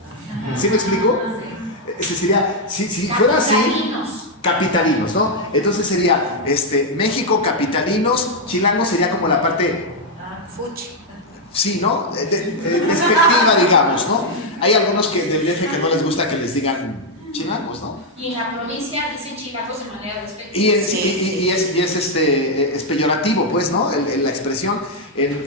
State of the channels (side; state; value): both; normal; correlation -0.01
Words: ¿Sí me explico? Ese sería, si fuera así, capitalinos, ¿no? Entonces sería México, capitalinos, chilango sería como la parte Fuchi. sí, ¿no? Despectiva, digamos, ¿no? Hay algunos del DF que no les gusta que les digan chilangos, ¿no? Y en la provincia dicen chilangos de manera despectiva. Y es peyorativo, pues, ¿no? La expresión.